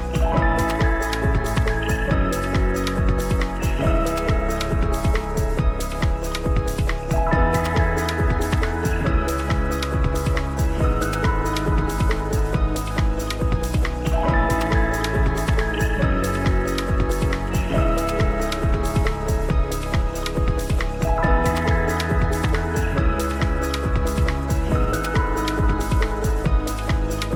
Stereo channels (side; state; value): both; identical; correlation 1.00